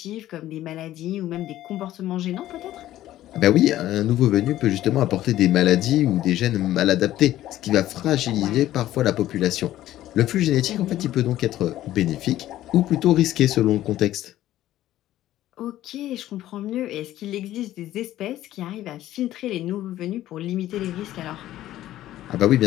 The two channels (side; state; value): right; quieter; 13.9 dB